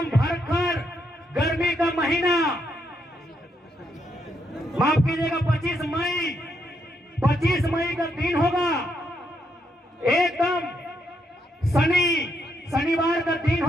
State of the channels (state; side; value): normal; both; correlation 0.78